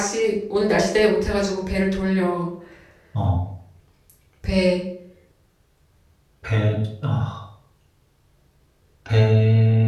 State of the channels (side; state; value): both; identical; correlation 1.00